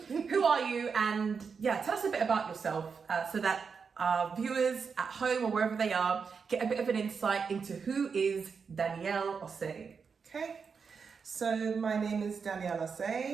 are you? And yeah, tell us a bit about yourself so that our viewers at home or wherever they are get a bit of an insight into who is Danielle Osei. Okay, so my name is Danielle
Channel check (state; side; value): quieter; left; 5.7 dB